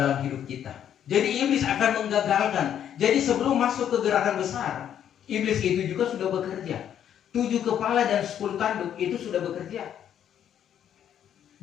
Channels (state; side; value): quieter; right; 9.7 dB